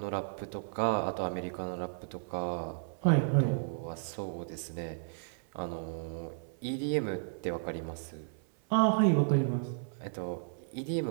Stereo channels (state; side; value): silent; left; 55 dB below the other